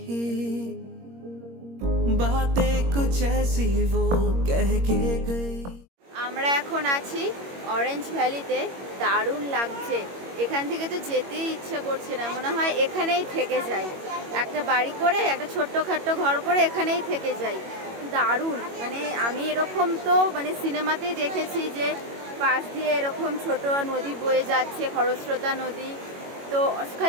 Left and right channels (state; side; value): late; left; 21 ms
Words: बातें कुछ ऐसी वो कह के गई। আমরা এখন আছি অরেঞ্জ ভ্যালিতে, দারুণ লাগছে। এখান থেকে তো যেতেই ইচ্ছে করছে না, মনে হয় এখানেই থেকে যাই, একটা বাড়ি করে একটা ছোট্টখাট্টো ঘর করে এখানেই থেকে যাই। দারুণ, মানে আমি এরকম তো মানে সিনেমাতেই দেখেছি যে পাশ দিয়ে এরকম ছোট নদী বয়ে যাচ্ছে, খরস্রোতা নদী, তো